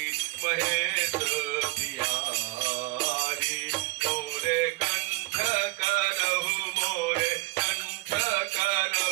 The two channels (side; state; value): left; quieter; 23.1 dB